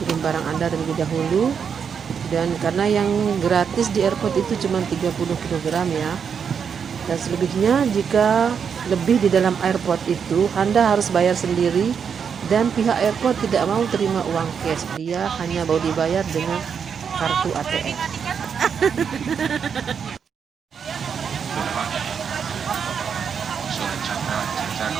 barang Anda terlebih dahulu, dan karena yang gratis di airport itu cuma 30 kg ya. Dan selebihnya, jika lebih di dalam airport itu, Anda harus bayar sendiri, dan pihak airport tidak mau terima uang cash. Dia hanya mau dibayar dengan kartu ATM.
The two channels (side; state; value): left; quieter; 6.9 dB